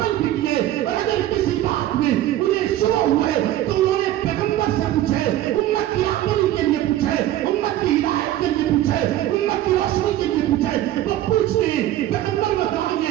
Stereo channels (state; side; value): quieter; left; 13.5 dB